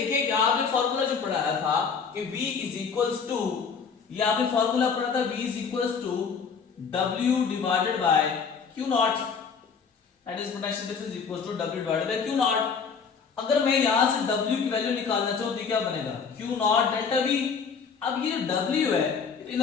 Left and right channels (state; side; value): quieter; right; 5.9 dB